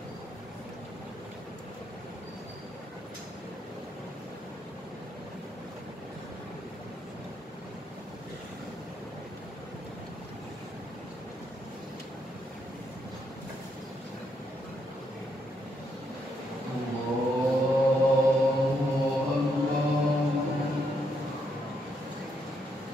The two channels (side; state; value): both; normal; correlation 0.77